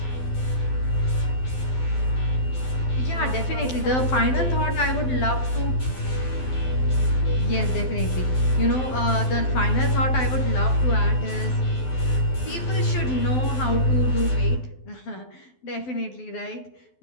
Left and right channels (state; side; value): late; right; 12 ms